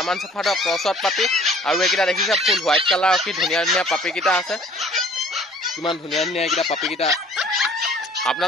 शेफাৰ্ডৰ क्रॉसত पापी और एकिटा देखिছে फुल व्हाइट कलर की धुनिया धुनिया पापी किटा আছে किमान धुनिया धुनिया एकिटा पापी किटा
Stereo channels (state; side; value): normal; both; correlation 0.53